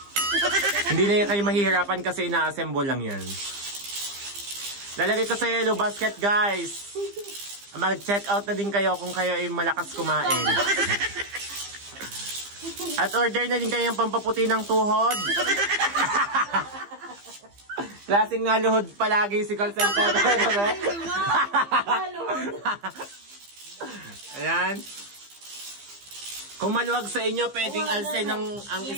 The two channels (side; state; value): left; late; 15 ms